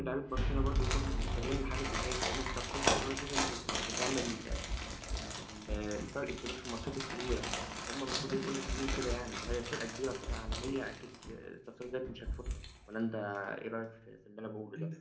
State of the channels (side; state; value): both; identical; correlation 1.00